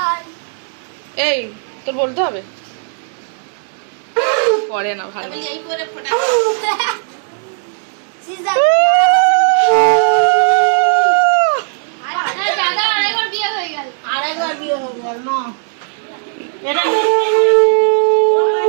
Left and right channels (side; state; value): left; silent; digital silence